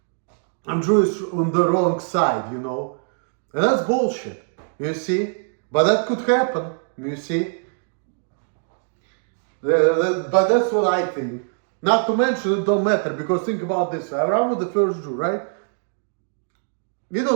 I'm Jewish on the wrong side, you know. And that's bullshit, you see. But that could happen, you see. But that's what I think. Not to mention it don't matter, because think about this. Abraham was the first Jew, right? We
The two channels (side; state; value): left; silent; digital silence